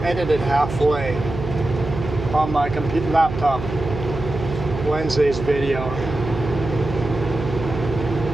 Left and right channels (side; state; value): right; noise; hum, 8 dB below the sound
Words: edited halfway on my computer laptop. Wednesday's video.